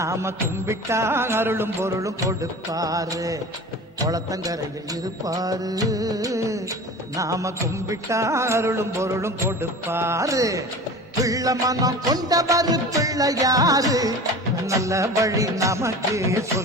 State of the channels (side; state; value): both; normal; correlation 0.36